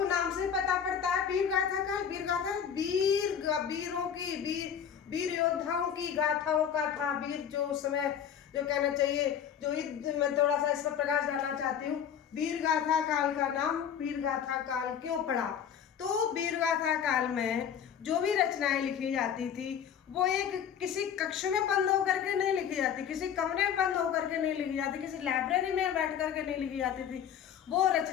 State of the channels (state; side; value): quieter; right; 8.4 dB